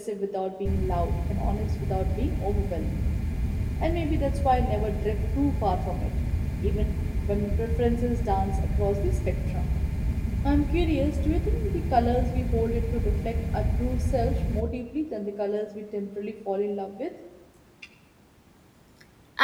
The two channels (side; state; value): both; identical; correlation 1.00